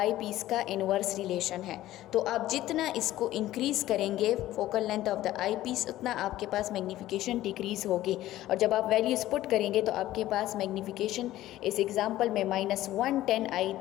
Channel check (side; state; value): right; quieter; 14.8 dB